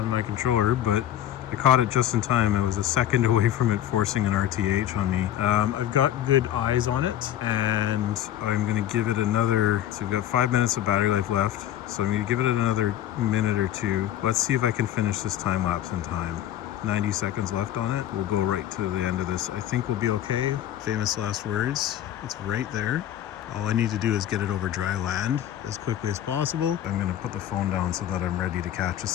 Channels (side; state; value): right; quieter; 11.7 dB